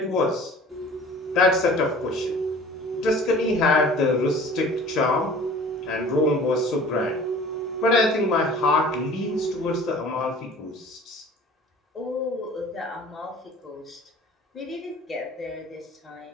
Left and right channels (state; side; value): normal; both; correlation 0.45